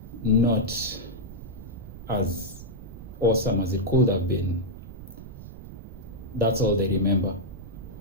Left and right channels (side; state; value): right; noise; rumble, 13 dB below the sound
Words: not as awesome as it could have been, that's all they remember.